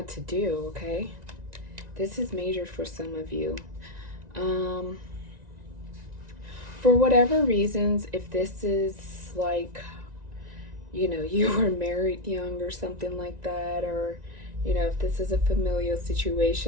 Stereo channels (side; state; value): left; late; 1.9 ms